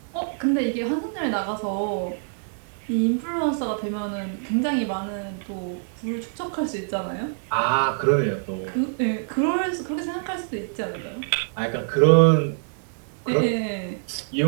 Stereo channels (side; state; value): left; silent; 62 dB below the other